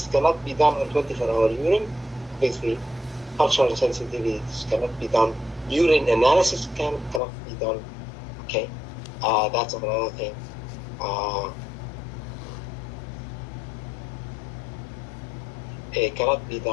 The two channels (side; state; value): right; drops out; at 7.2 s